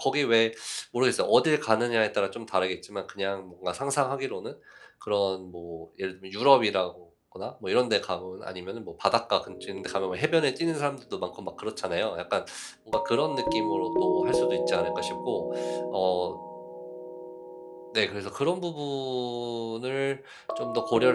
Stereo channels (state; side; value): identical; both; correlation 1.00